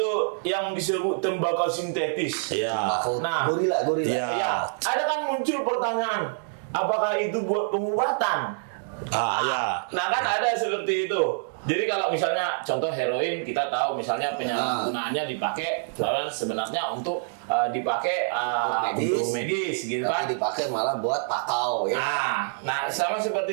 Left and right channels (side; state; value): left; silent; digital silence